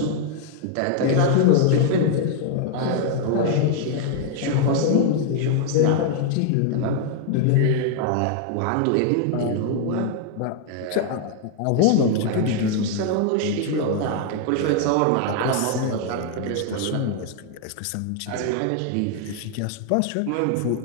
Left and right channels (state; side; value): different; both; correlation 0.00